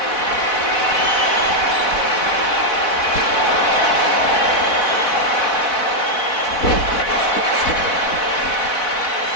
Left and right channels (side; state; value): right; late; 4.1 ms